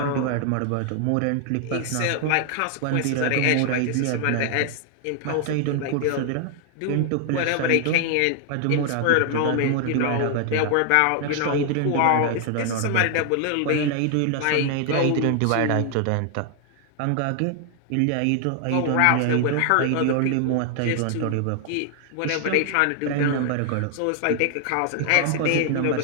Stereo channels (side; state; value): both; different; correlation 0.00